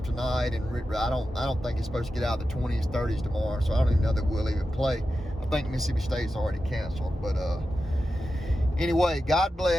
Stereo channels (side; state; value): both; normal; correlation 0.91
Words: tonight, and I don't think it's supposed to get out of the 20s, 30s tomorrow. So I don't even know that we'll even play. I think Mississippi State's already canceled, but anyway, God